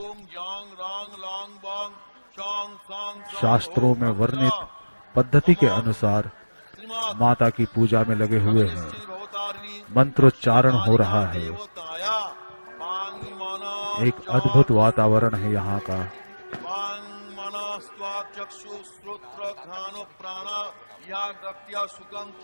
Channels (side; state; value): both; inverted; correlation -1.00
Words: शास्त्रों में वर्णित पद्धति के अनुसार माता की पूजा में लगे हुए हैं। मंत्रोच्चारण हो रहा है। एक अद्भुत वातावरण है यहाँ का।